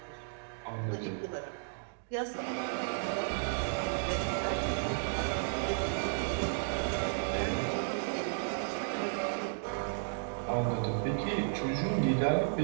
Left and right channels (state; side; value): silent; left; digital silence